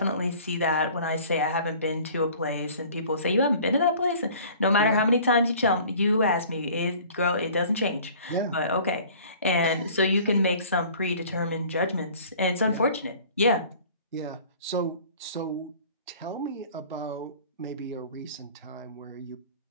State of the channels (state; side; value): inverted; both; correlation -0.48